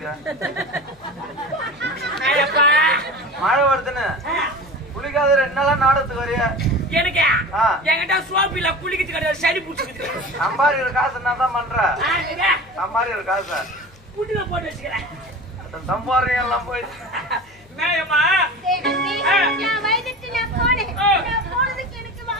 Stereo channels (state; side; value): noise; left; hum, 28 dB below the sound